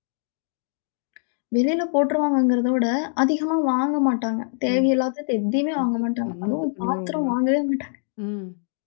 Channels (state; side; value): silent; right; 63 dB below the other